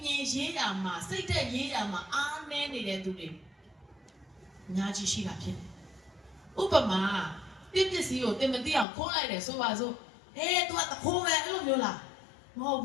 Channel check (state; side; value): drops out; right; at 8.8 s